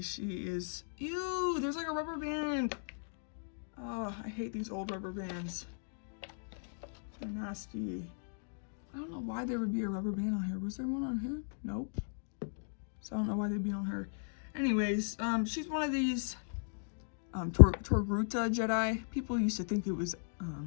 She is, ew, there's like a rubber band. Oh, I hate these old rubber bands. They're nasty. I don't know why there would be a rubber band on here. Was there one on here? Nope. So I don't know why they'd be on her. Anyways, she's one of these Togruta Jedi. People used to think it was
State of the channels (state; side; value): silent; right; digital silence